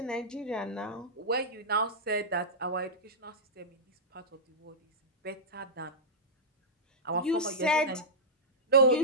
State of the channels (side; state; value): both; normal; correlation -0.12